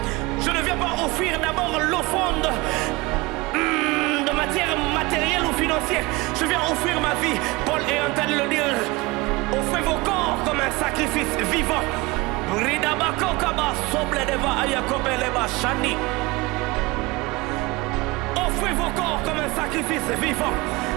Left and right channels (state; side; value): quieter; left; 22.8 dB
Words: Je ne viens pas offrir d'abord l'offrande de matière matérielle ou financière. Je viens offrir ma vie. Paul est en train de le dire. Offrez vos corps comme un sacrifice vivant. Offrez vos corps comme un sacrifice vivant.